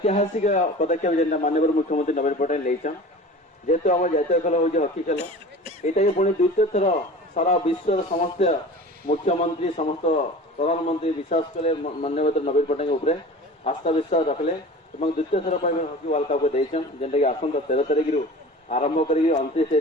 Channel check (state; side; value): normal; both; correlation 0.38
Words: पदक्षेप जेन माननीय मुख्यमंत्री नवीन पट्टनायक लेचन जेहेतु आम जातीय खेल हूँ हॉकी खेल यहाँ पुणी द्वितीय थर सारा विश्व समस्त मुख्यमंत्री समस्त प्रधानमंत्री विश्वास कले माननीय नवीन पट्टनायक आस्था विश्वास रखले द्वितीय थर पर हॉकी वर्ल्ड कप देचन जेनटा कि आसंता 13 तारिख रु आरंभ कर